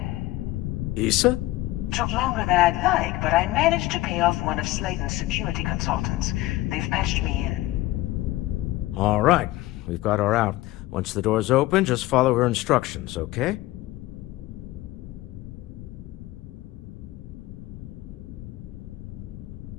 Issa? Took longer than I'd like, but I managed to pay off one of Slayton's security consultants. They've patched me in. All right, we've got her out. Once the door's open, just follow her instructions, okay?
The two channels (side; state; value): right; quieter; 17.6 dB